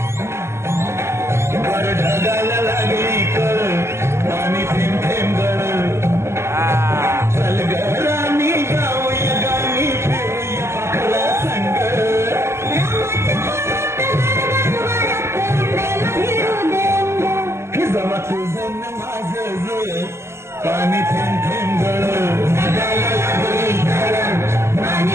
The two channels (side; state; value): left; late; 0.13 ms